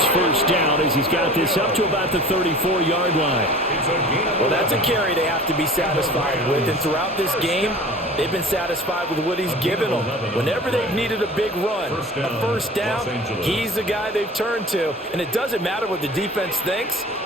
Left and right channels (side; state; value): both; normal; correlation 0.41